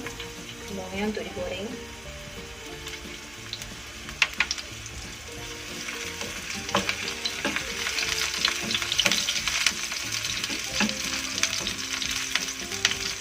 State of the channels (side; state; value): right; noise; hum, 20 dB below the sound